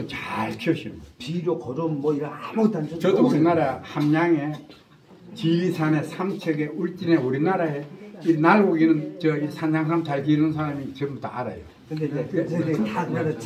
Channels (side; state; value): both; identical; correlation 1.00